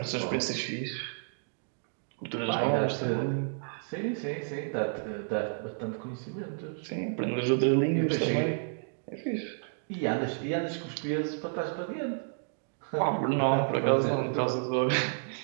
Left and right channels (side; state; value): left; silent; digital silence